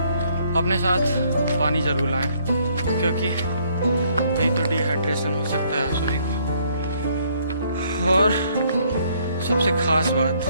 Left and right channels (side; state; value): both; inverted; correlation -0.66